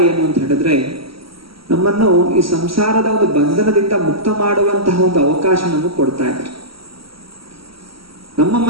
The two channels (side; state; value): left; late; 0.75 ms